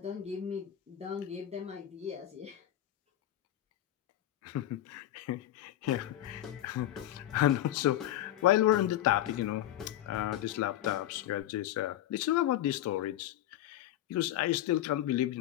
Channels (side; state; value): right; quieter; 12.9 dB